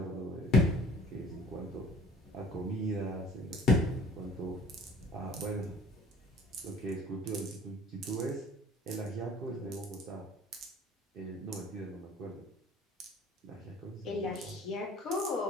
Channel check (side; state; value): both; normal; correlation 0.50